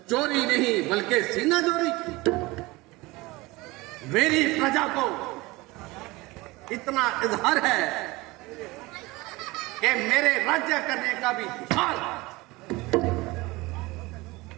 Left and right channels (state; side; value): quieter; left; 21.8 dB